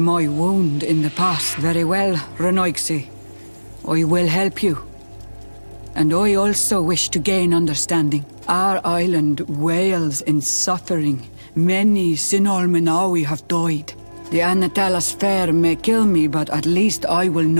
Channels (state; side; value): inverted; both; correlation -1.00